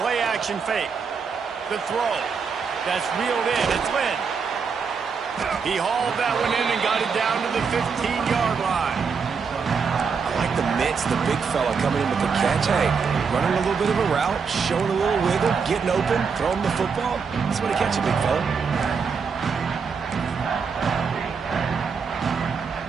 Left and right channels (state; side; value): quieter; left; 5.7 dB